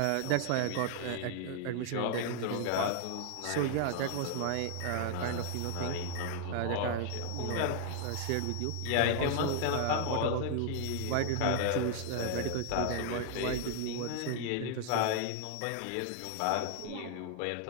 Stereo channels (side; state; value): both; different; correlation 0.00